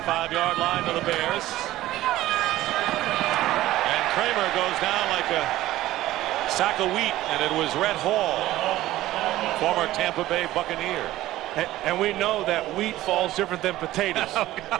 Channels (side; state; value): left; quieter; 15.6 dB